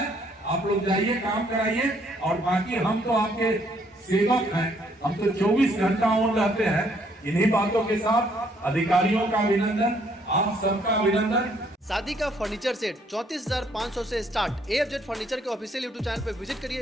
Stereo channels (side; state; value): both; normal; correlation 0.67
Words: आप लोग जाइए, काम कराइए। और बाकी हम तो आपके सेवक हैं, हम तो 24 घंटा ऑन रहते हैं। इन्हीं बातों के साथ अधिकारियों का अभिनंदन, आप सबका अभिनंदन। शादी का फर्नीचर सेट 34,500 से स्टार्ट। AFZ फर्नीचर के ऑफिशियल YouTube चैनल पर विजिट